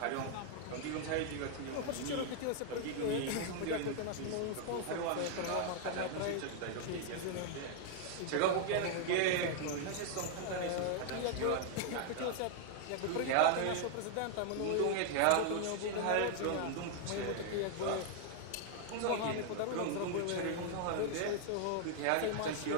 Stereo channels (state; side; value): different; both; correlation 0.00